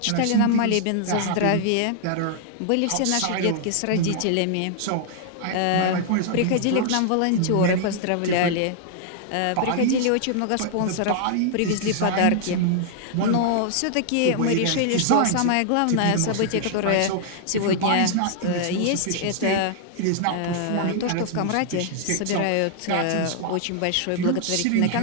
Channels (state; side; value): different; both; correlation -0.01